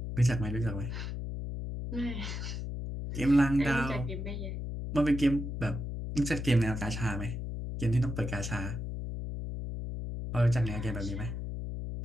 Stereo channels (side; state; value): left; noise; hum, 5 dB below the sound